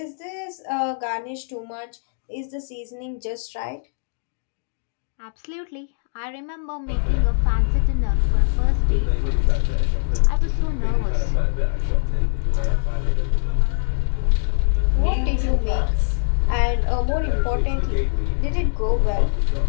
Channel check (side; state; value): right; silent; digital silence